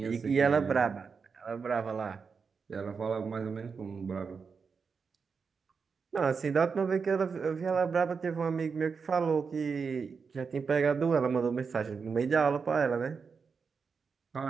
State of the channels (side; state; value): left; quieter; 5.5 dB